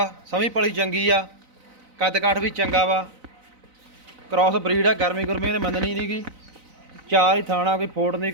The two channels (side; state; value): left; late; 4.0 ms